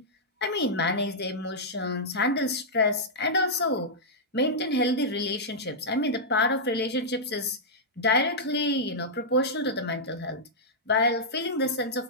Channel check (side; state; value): both; normal; correlation -0.09